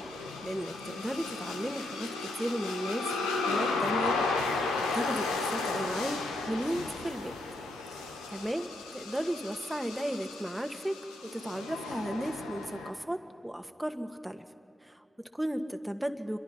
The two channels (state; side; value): normal; both; correlation 0.80